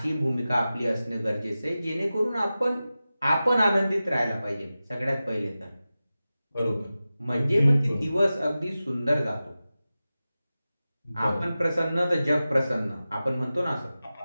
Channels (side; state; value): both; inverted; correlation -0.95